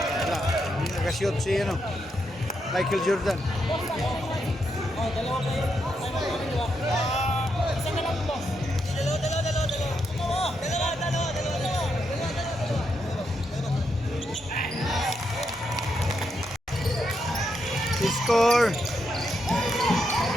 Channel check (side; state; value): both; normal; correlation 0.81